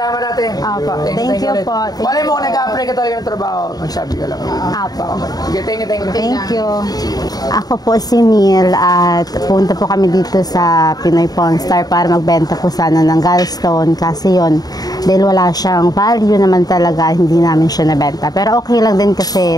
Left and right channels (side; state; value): right; late; 0.18 ms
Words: natin. Apo. Thank you po. Malay mo kung nag-apply ka talaga ng trabaho, magsabi ka lang. Apo. Sige, thank you. Thank you. Ako po si Neil at punta po kami dito sa Pinoy Pawn Star para magbenta po sana ng gallstone kasi yon dahil wala siyang value naman talaga, hindi namin siya nabenta. Pero okay lang din